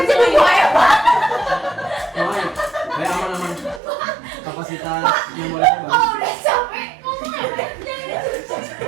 Jadi gue ya Pak. Kayak aman-aman. Kapasitas memorinya bagus. Kalau udah capek ngomong apa?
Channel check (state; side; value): drops out; left; at 3.8 s